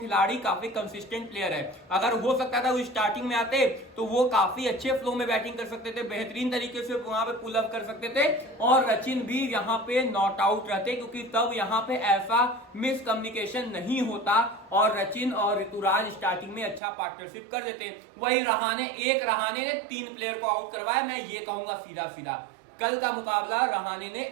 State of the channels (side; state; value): left; drops out; at 16.8 s